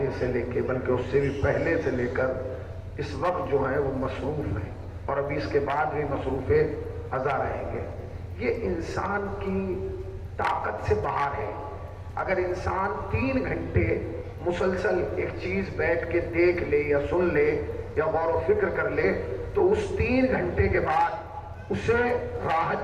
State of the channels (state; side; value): identical; both; correlation 1.00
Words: سے لے کے، بلکہ اس سے بھی پہلے سے لے کر اس وقت جو ہیں وہ مصروف ہیں، اور ابھی اس کے بعد بھی مصروف ازا رہیں گے. یہ انسان کی طاقت سے باہر ہے. اگر انسان 3 گھنٹے مسلسل ایک چیز بیٹھ کے دیکھ لے یا سن لے یا غور و فکر کر لے، تو اس 3 گھنٹے کے بعد اسے